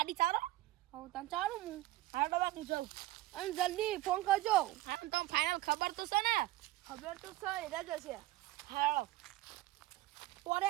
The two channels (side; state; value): left; quieter; 16.6 dB